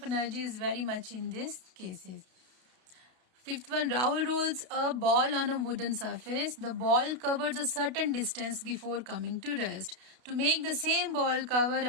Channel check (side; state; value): left; late; 32 ms